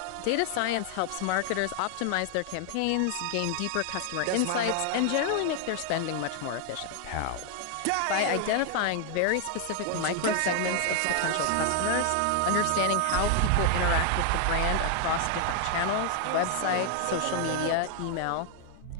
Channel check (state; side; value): different; both; correlation 0.00